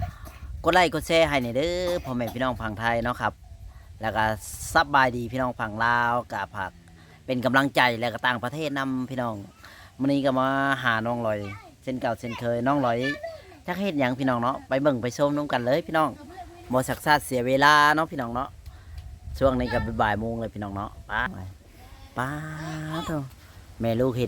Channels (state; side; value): identical; both; correlation 1.00